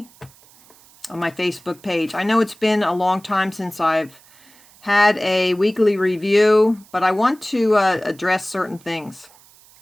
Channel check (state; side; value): noise; right; hiss, 27 dB below the sound